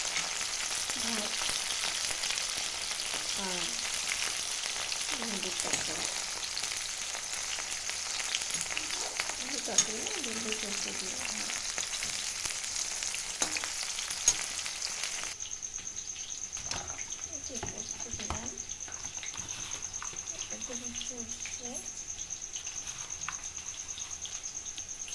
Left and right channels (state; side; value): identical; both; correlation 1.00